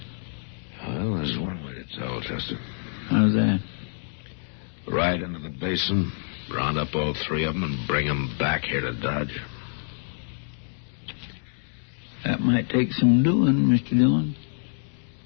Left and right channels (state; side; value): silent; right; digital silence